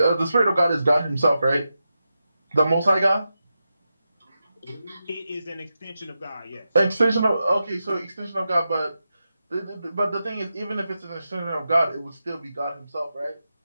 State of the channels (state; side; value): inverted; both; correlation -0.89